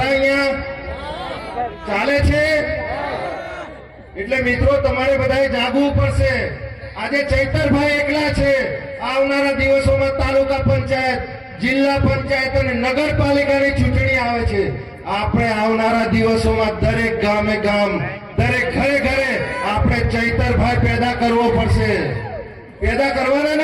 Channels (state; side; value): identical; both; correlation 1.00